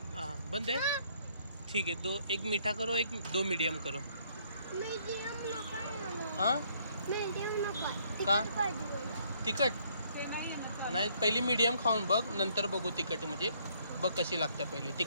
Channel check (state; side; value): inverted; both; correlation -0.66